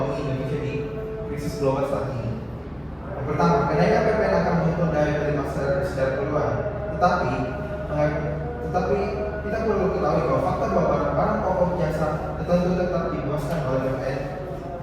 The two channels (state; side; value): identical; both; correlation 1.00